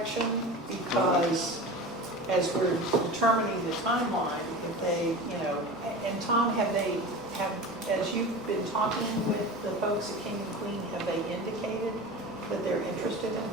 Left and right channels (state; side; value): noise; left; rumble, 28 dB below the sound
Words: Because as we're determining the timeline, if they, and Tom, as you've been talking with the folks at King and Queen, have they indicated that they're interested in